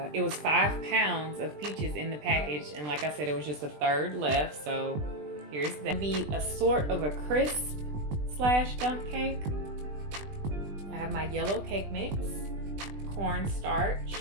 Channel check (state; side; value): late; left; 20 ms